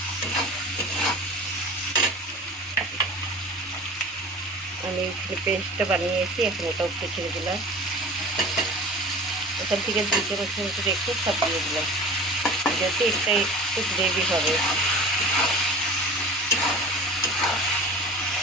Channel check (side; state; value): both; normal; correlation 0.39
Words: আমি পেস্টটা বানিয়েছি, এখন ওটা একটু ছেড়ে দিলাম। ওখান থেকে 2 চামচ মতো একটু সব দিয়ে দিলাম, যাতে এটা একটু গ্রেভি হবে।